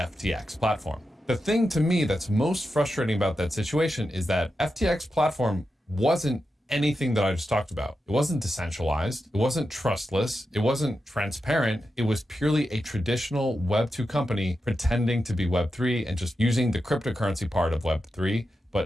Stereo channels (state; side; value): normal; both; correlation 0.89